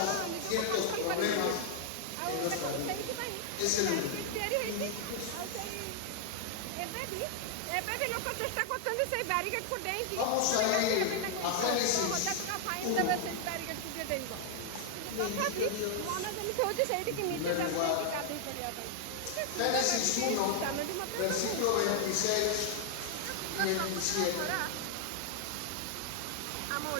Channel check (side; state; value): both; different; correlation 0.00